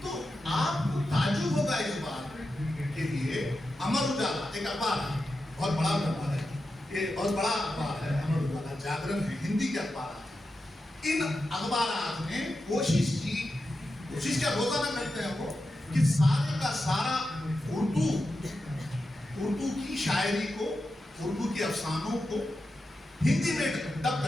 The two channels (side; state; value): both; normal; correlation 0.90